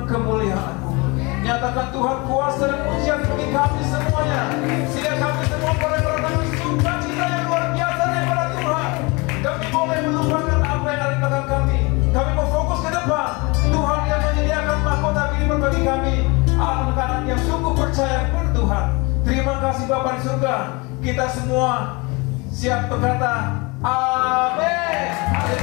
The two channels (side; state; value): right; quieter; 26.8 dB